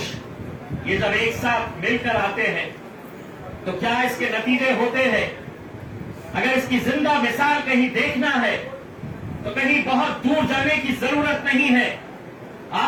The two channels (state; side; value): identical; both; correlation 1.00